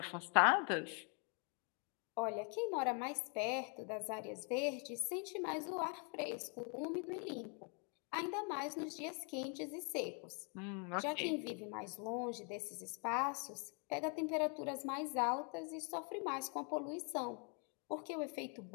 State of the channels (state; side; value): quieter; right; 38.2 dB